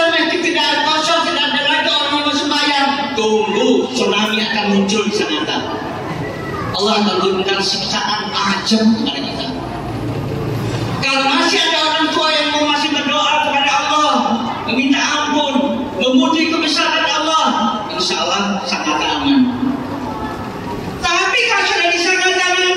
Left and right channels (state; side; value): identical; both; correlation 1.00